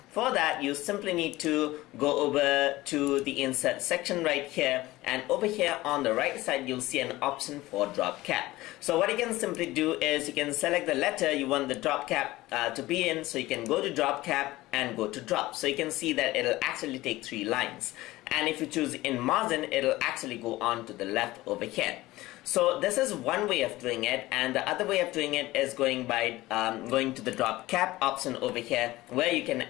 For that, you simply need to go over to the insert section right here, and over here on the right side you'll see an option for drop cap. So what you can simply do is you can select the letter you want the drop cap to be in. So you can go to drop cap and go to drop. So you can see that it'll actually take 3 lines, and if you choose in margin, it'll actually go on to the left over here. So this is one way of doing it, and the other way of doing it is going to the drop cap option over here, where you can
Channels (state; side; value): quieter; right; 18.2 dB